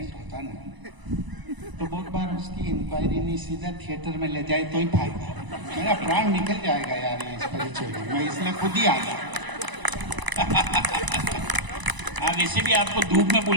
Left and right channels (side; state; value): left; late; 1.0 ms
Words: होता ना, तो बहुत बार उसकी इंक्वायरी नहीं सीधा थिएटर में ले जाए तो ही फायदा। मेरा प्राण निकल जाएगा यार ये इस परिचय में, मैं इसलिए खुद ही आ गया। हाँ, वैसे भी आपको धूप में